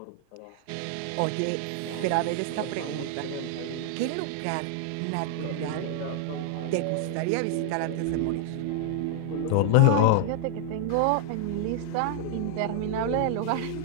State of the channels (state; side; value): different; both; correlation 0.00